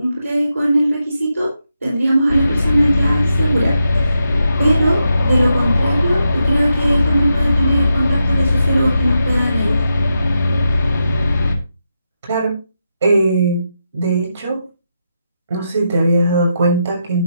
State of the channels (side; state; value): both; inverted; correlation -0.85